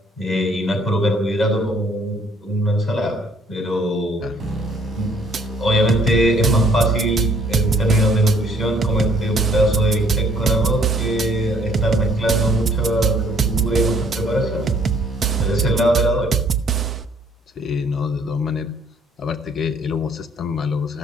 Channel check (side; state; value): both; normal; correlation 0.62